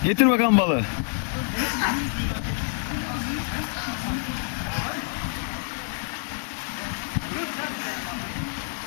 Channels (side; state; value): right; silent; 60 dB below the other